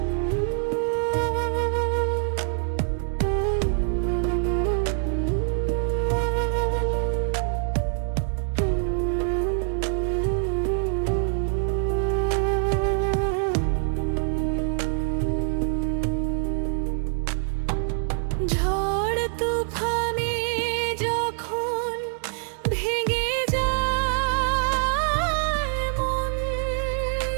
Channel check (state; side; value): silent; left; 62 dB below the other